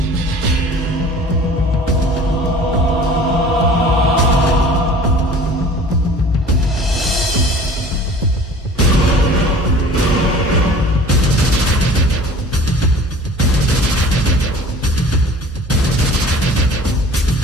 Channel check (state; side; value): normal; both; correlation 0.45